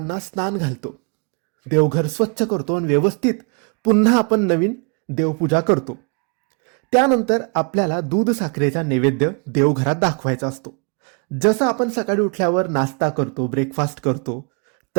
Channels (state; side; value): quieter; left; 36.2 dB